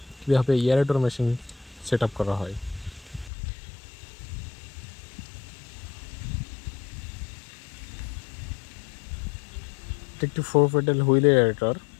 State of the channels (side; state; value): right; drops out; at 3.3 s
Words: কীভাবে এয়ারেটর মেশিন সেট আপ করা হয়। এটা একটি 4 পেডাল হুইল এয়ারেটর।